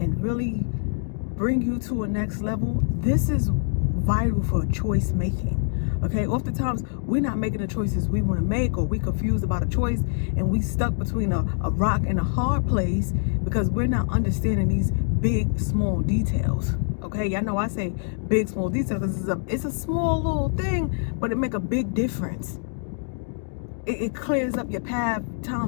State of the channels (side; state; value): right; silent; digital silence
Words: really bring you to a next level, this is vital for choice making, okay? Oftentimes, we're not making the choices we want to make, or we confused about a choice, and we stuck between a rock and a hard place because we're not understanding these big, small details. Okay, y'all know I say big, small details. It's a small little thing, but it make a big difference. It clears up your path